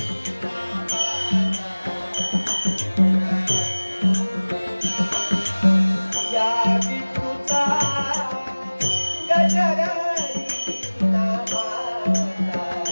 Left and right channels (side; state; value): both; inverted; correlation -1.00